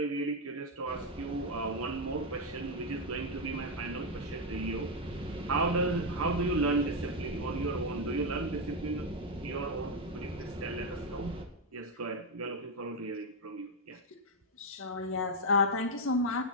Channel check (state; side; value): normal; both; correlation 0.04